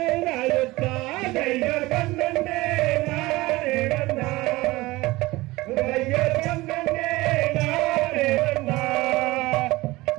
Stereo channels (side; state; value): left; quieter; 20.1 dB